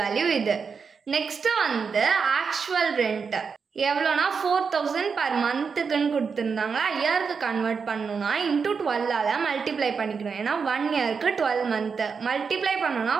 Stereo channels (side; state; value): left; quieter; 5.7 dB